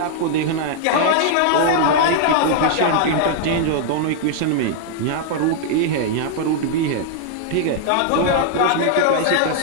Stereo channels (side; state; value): both; different; correlation -0.01